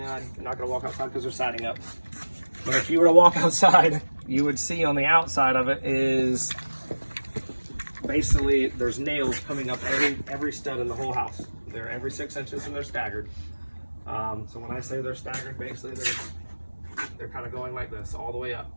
not going to walk outside because they're siding up. But if you were to walk outside, you would see on the outside of it is basically there's nails coming up every stud in the whole house. They're every 6 inches and they're staggered. So when I say they're staggered, basically they're kind of going like this all the way up.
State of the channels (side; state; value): both; inverted; correlation -1.00